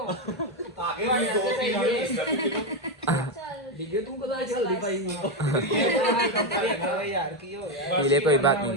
पीले कोई बात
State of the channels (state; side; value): normal; both; correlation 0.08